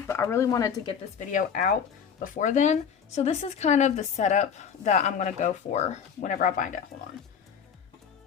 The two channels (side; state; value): right; quieter; 7.2 dB